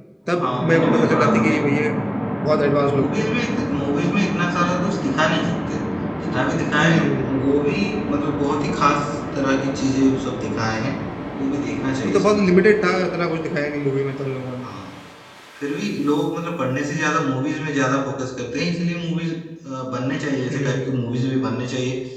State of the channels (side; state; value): both; identical; correlation 1.00